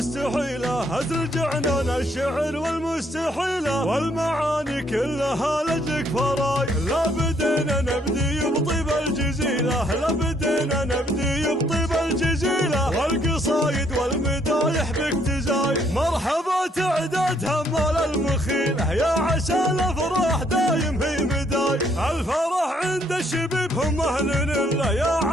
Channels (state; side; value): normal; both; correlation 0.68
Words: هزر عنان الشعر والمستحيلة، والمعاني كلها لجلك فراي، لا بدينا نبدي بطيب الجزيلة، لا بدينا نبدي بطيب الجزيلة، والقصايد والمدايح بك تزاي، مرحبا تعداد همال المخيلة، يا عسى الافراح دايم هي مداي، الفرح عند الشبيب هم اهل الله، يا